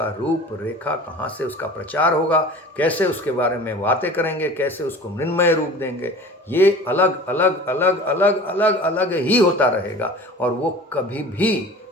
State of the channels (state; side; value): normal; both; correlation 0.40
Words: रूप रेखा कहाँ से उसका प्रचार होगा, कैसे उसके बारे में बातें करेंगे, कैसे उसको मृन्मय रूप देंगे, ये अलग अलग ही होता रहेगा। और वो कभी